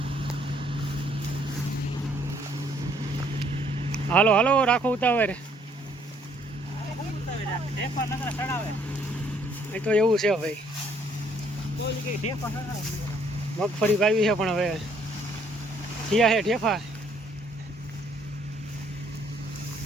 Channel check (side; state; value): both; normal; correlation 0.65